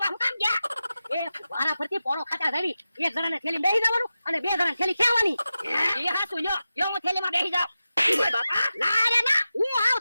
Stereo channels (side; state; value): both; inverted; correlation -0.92